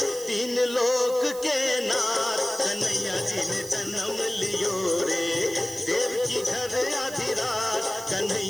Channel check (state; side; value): noise; right; hiss, 14 dB below the sound